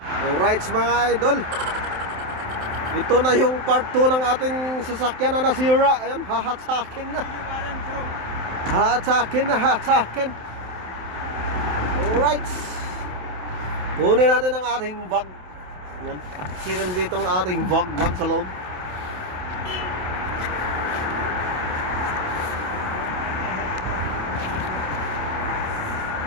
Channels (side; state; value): left; late; 27 ms